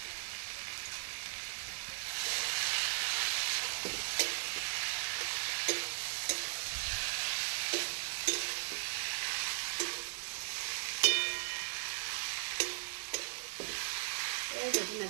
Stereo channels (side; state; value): left; silent; digital silence